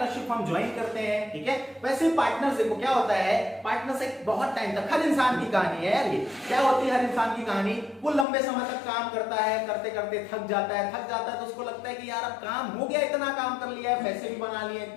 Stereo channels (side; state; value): right; drops out; at 8.2 s